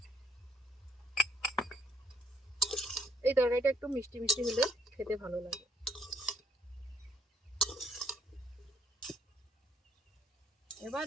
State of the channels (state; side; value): normal; both; correlation 0.68